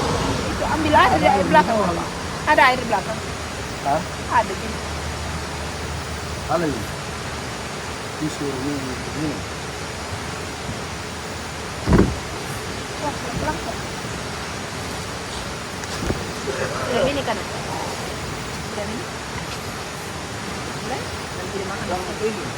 Itu ambil aja dari air belakang. Ada air belakang. Ha? Ada gitu. Ano yun? Piso yun. Wah, pelan-pelan kok. Ini kan. Dan ini. Boleh? Nanti dimakan.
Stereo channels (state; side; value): identical; both; correlation 1.00